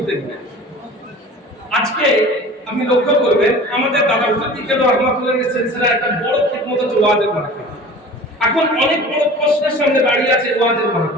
নিয়ে। আজকে আপনি লক্ষ্য করবেন আমাদের দাদা হুজুর বিজ্ঞান রহমাতুল্লাহের সিলসিলা একটা বড় খিদমত হচ্ছে ওয়াজের মাহফিল। এখন অনেক বড় প্রশ্নের সামনে দাঁড়িয়ে আছে ওয়াজের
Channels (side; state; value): both; normal; correlation 0.41